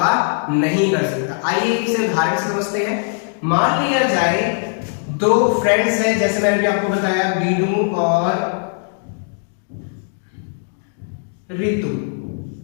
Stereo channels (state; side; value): silent; right; 66 dB below the other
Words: नहीं कर सकता। आइए इसे उदाहरण से समझते हैं। मान लिया जाए दो फ्रेंड्स हैं, जैसे मैंने भी आपको बताया बीनू और रितु।